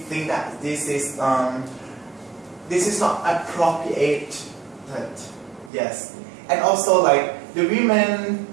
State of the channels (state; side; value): drops out; left; at 5.7 s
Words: that this is not appropriate. Yes, and also like the women